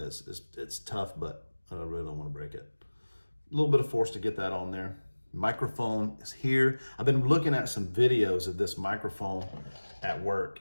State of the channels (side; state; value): both; inverted; correlation -1.00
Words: tough, but I really don't want to break it. A little bit of force to get that on there. Microphone is here. I've been looking at some videos of this microphone at work,